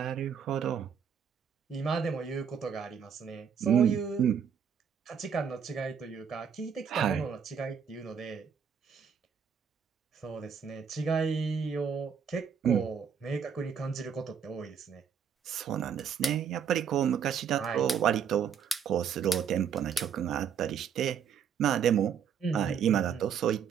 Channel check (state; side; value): quieter; left; 7.4 dB